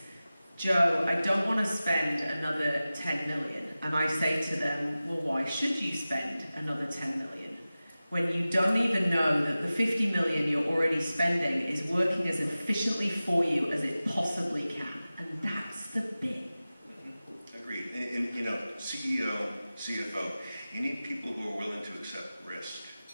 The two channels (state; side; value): inverted; both; correlation -0.96